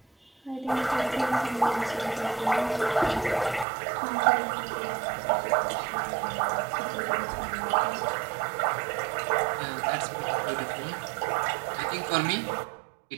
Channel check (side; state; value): left; drops out; at 3.7 s